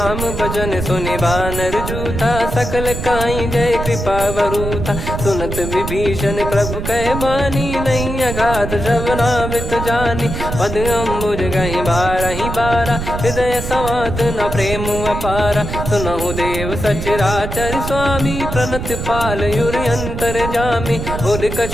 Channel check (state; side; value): noise; right; rumble, 5 dB below the sound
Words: भजन सुनि बानर जूथा सकल काई जय कृपा वरूथा सुनत विभीषण प्रभु कह बानी नहीं अगाध श्रवणामृत जानी पद अम्बुज गही बारही बारा हृदय समात न प्रेम अपारा सुनहु देव सचराचर स्वामी प्रणत पाल युर अंतर जामी उद